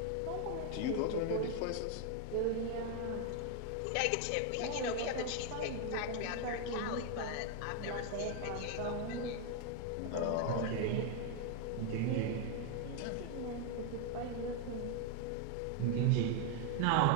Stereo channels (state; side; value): different; both; correlation 0.01